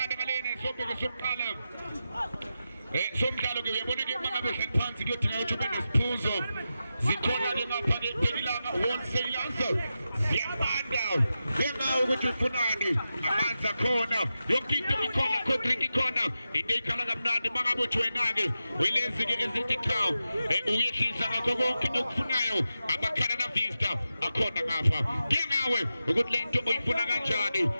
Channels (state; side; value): inverted; both; correlation -0.91